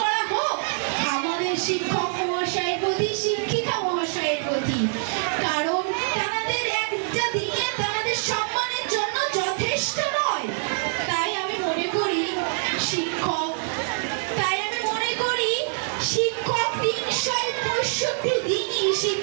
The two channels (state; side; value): silent; left; 62 dB below the other